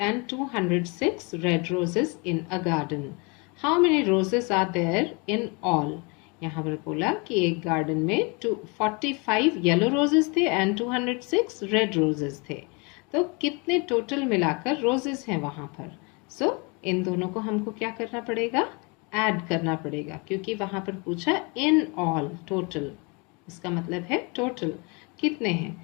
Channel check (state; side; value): quieter; right; 30.3 dB